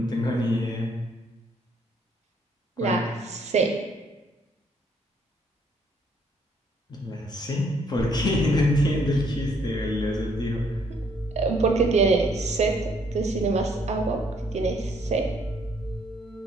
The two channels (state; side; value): normal; both; correlation 0.66